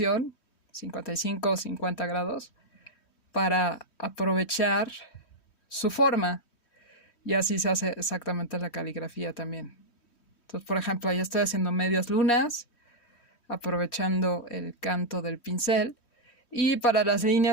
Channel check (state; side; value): late; right; 3.1 ms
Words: 55 o 50 grados, para aprovechar su forma. Y así se hace exactamente la caligrafía también. Entonces, por ejemplo, ahí estoy haciendo medias lunas, aprovechando el canto del pincel. Y para las